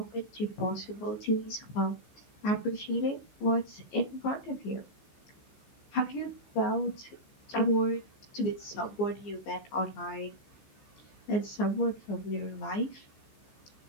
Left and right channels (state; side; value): late; right; 15 ms